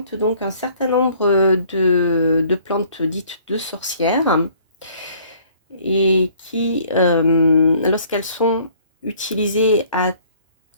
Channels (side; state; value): both; inverted; correlation -0.58